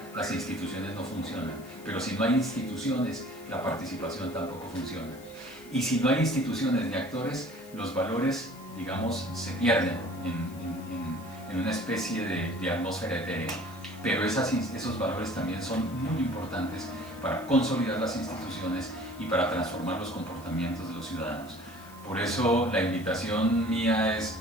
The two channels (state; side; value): noise; left; hiss, 22 dB below the sound